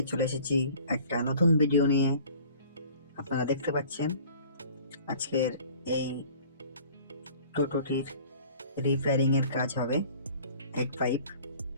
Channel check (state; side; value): inverted; both; correlation -0.49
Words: চলে এসেছি একটা নতুন ভিডিও নিয়ে। আপনারা দেখতে পাচ্ছেন আজকের এই টোটোটির রিপেয়ারিং এর কাজ হবে। হেড পাইপ